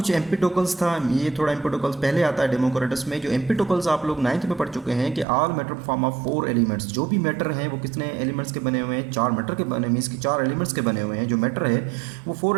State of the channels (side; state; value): left; drops out; at 5.2 s